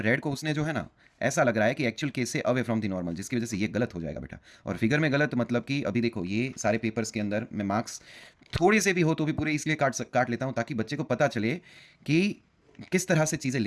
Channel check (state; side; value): identical; both; correlation 1.00